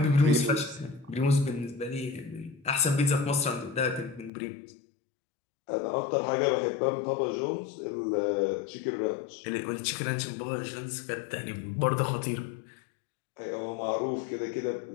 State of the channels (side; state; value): right; drops out; at 4.3 s